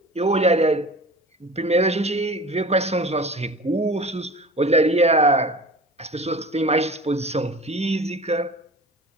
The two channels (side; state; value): both; normal; correlation 0.39